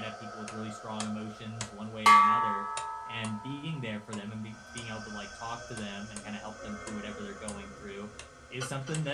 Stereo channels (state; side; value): identical; both; correlation 1.00